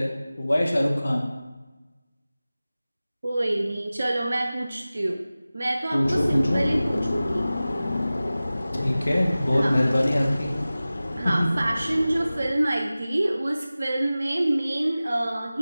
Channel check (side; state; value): both; inverted; correlation -0.97